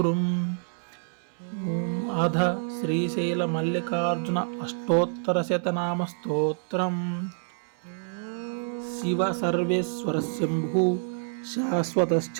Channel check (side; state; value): left; silent; 60 dB below the other